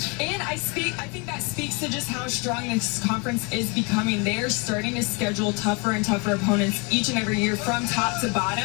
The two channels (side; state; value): right; quieter; 29.8 dB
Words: And I think that speaks to just how strong this conference is becoming. They are starting to schedule tougher and tougher opponents each and every year from top to